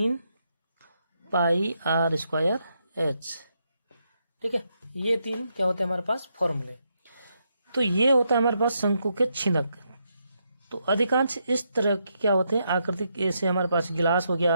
पाई आर स्क्वायर एच, ठीक है। ये 3 क्या होते हैं हमारे पास फॉर्मूले। तो ये होता है हमारे पास शंकु के छिनक। तो अधिकांश इस तरह की क्या होते हैं आकृति, ऐसे हमारे पास गिलास हो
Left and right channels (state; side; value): inverted; both; correlation -0.80